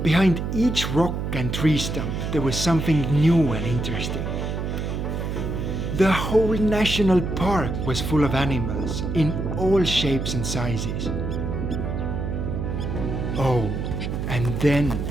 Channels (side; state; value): right; noise; hum, 3 dB below the sound